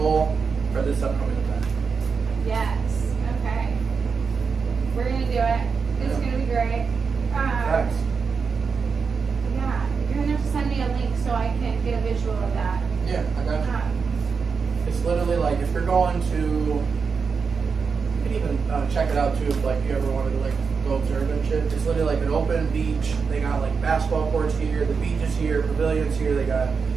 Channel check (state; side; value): quieter; left; 5.4 dB